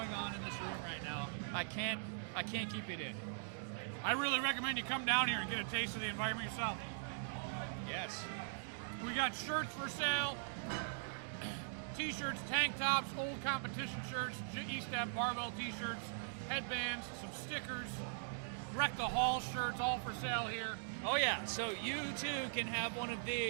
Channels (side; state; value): left; silent; digital silence